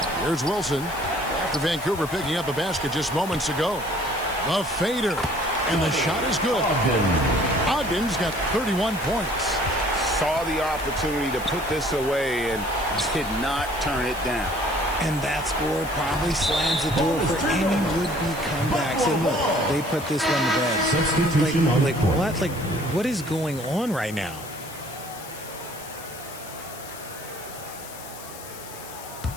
Here's Wilson after Vancouver picking up a basket just moments ago. The fader, and the shot is good. Ogden's got 31 points. Saw the opportunity to put this away and did not turn it down. And that score probably slams the door for any would-be comebacks. And look, they put this one to bed. Substitution on the court. What? Like, what is going on right now?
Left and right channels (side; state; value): left; noise; hiss, 15 dB below the sound